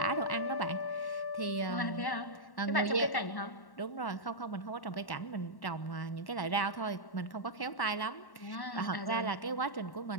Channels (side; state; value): right; late; 1.1 ms